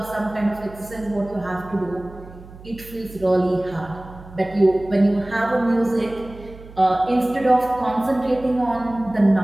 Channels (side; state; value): right; noise; hum, 18 dB below the sound